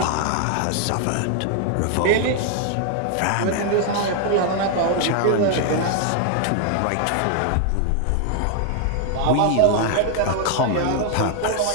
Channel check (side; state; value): both; different; correlation 0.00